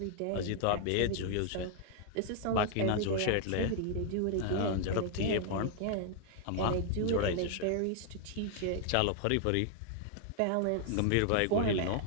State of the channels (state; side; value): different; both; correlation 0.00